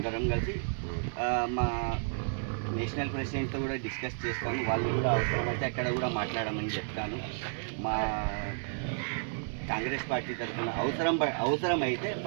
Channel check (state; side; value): silent; left; 57 dB below the other